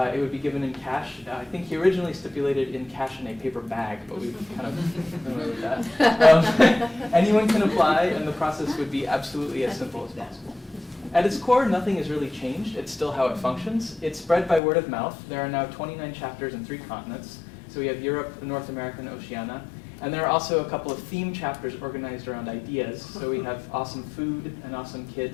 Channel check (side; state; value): right; drops out; at 14.6 s